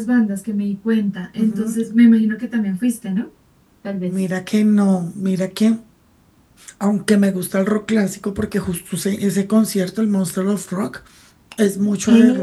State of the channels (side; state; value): both; identical; correlation 1.00